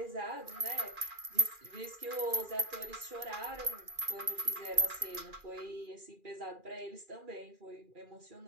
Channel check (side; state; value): left; late; 2.4 ms